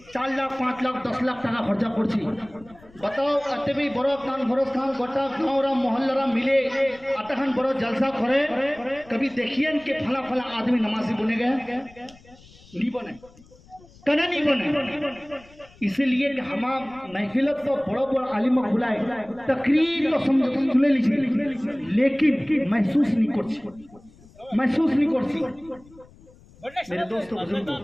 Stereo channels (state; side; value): noise; left; rumble, 25 dB below the sound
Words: 4 लाख 5 लाख 10 लाख टाका खर्चा पड़ी बताओ अत भी बड़ो कॉन्फ्रेंस खान गोटा गाँव मोहल्ला मिले अतखान बड़ो जलसा करे कभी देखिए कि फला फला आदमी नमाजी बने गए नहीं बने कना नहीं बने। इसलिए कि हम महफिलत को बड़ो बड़ो आलिम बुलाए तकरीर तो सुने लीजिए लेकिन महसूस नहीं कर मेरे दोस्तों